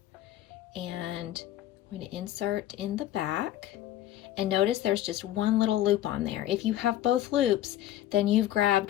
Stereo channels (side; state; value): right; quieter; 13.2 dB